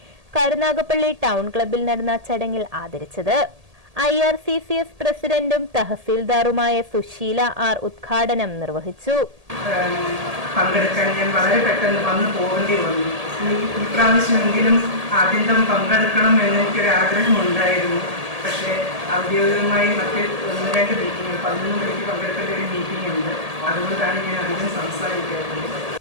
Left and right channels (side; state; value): left; late; 1.8 ms